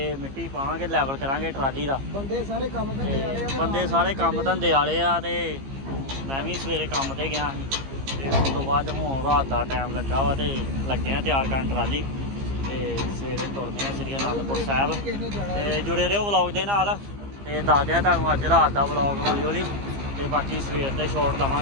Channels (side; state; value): left; late; 15 ms